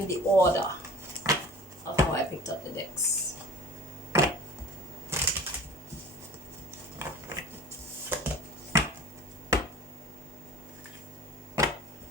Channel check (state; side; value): normal; both; correlation 0.43